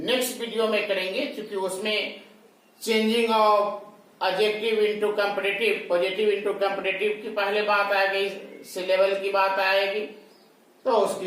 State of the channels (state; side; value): identical; both; correlation 1.00